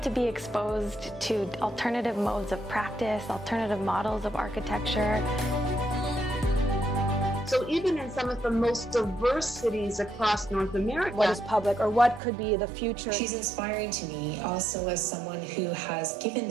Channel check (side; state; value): left; drops out; at 12.2 s